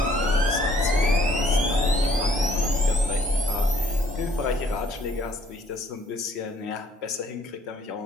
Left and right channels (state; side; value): normal; both; correlation 0.62